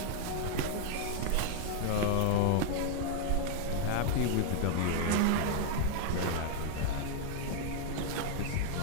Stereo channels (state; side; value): different; both; correlation 0.00